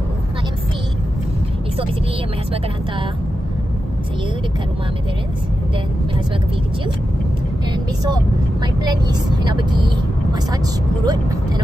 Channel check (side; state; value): both; normal; correlation 0.90